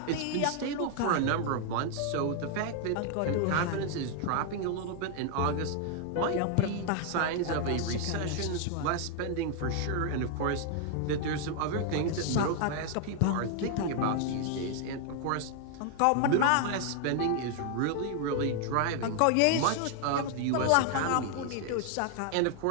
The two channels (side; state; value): both; different; correlation 0.00